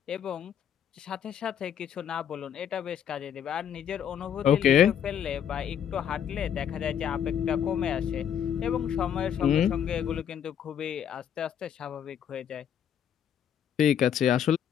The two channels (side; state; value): right; quieter; 8.9 dB